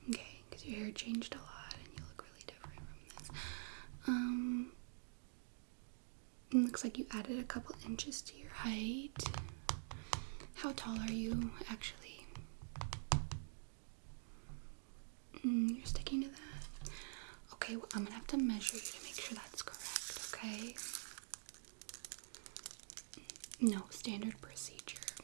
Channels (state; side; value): silent; left; digital silence